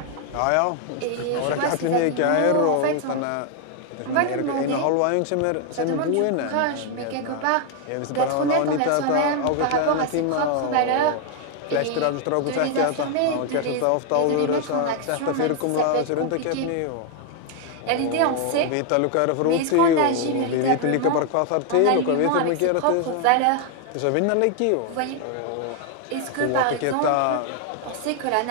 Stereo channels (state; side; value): different; both; correlation 0.00